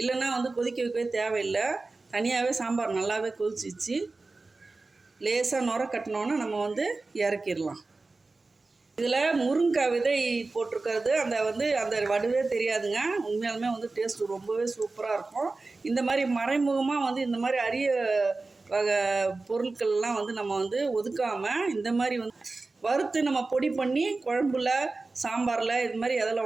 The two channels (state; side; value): quieter; left; 3.5 dB